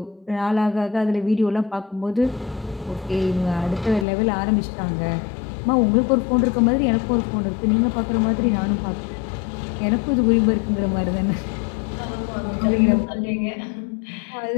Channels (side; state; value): right; drops out; at 4.0 s